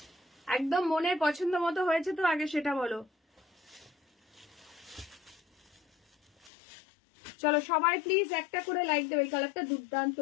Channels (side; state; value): right; drops out; at 6.5 s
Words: একদম মনের পছন্দ মতো হয়েছে তো আগে সেটা বলো। চলো সবাই প্লিজ একটা করে লাইক দেবে, এই কালারটা দুর্দান্ত